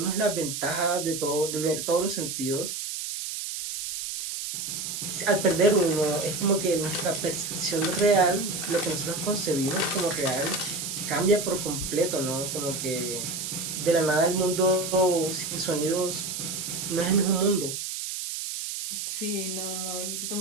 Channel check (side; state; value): right; noise; hiss, 5 dB below the sound